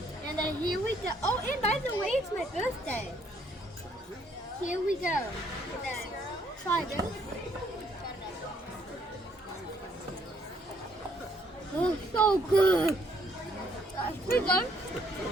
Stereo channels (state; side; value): normal; both; correlation 0.67